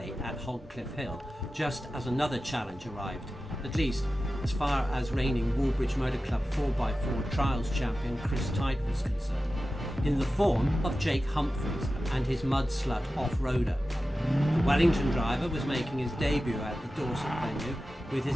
at Hogcliff Hill just as another challenge arrived, at least as far as reigning Woolbridge Motor Club 4x4 Trials champion Chris Tite was concerned, in the form of Jake Humphries and his mud slut off-roader. The Wellington driver was making his debut at the Dorset venue with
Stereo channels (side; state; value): both; normal; correlation 0.94